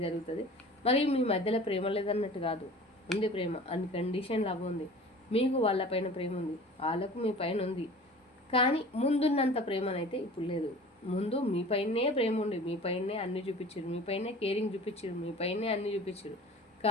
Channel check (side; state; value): both; normal; correlation 0.42